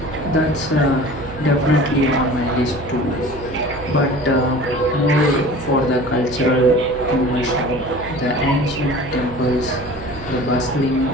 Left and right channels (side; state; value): right; noise; hum, 14 dB below the sound